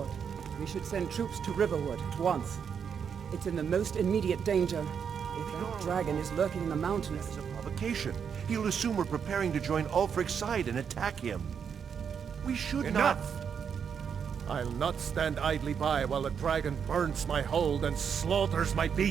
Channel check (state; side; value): quieter; left; 7.1 dB